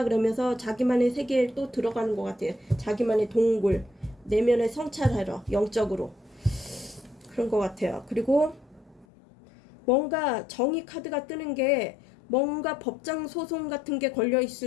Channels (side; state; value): right; drops out; at 9.1 s